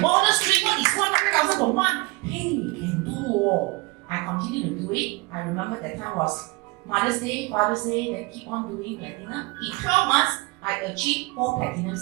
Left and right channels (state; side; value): quieter; left; 25.4 dB